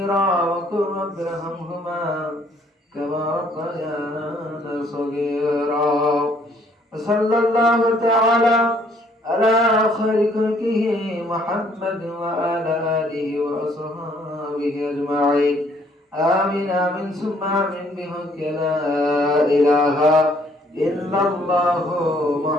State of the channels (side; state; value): both; normal; correlation 0.63